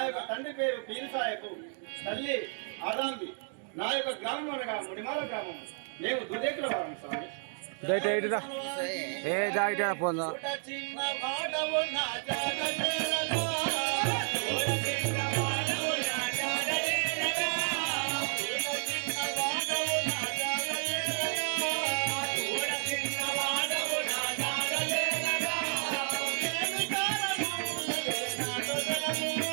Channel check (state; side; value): silent; left; 57 dB below the other